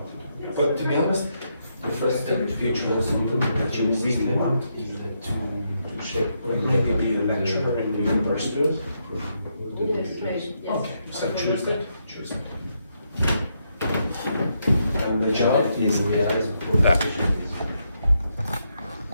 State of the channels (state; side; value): inverted; both; correlation -0.79